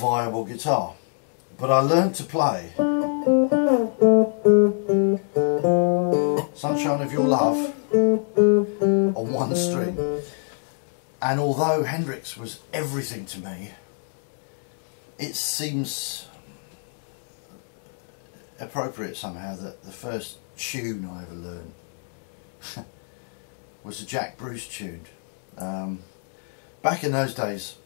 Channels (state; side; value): silent; right; 57 dB below the other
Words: guitar. But I learned to play Sunshine of Your Love on one string, and although Hendrix was everything to me, it seems appropriate somehow that the first tune I ever learned was a Jack Bruce tune. Back in those days,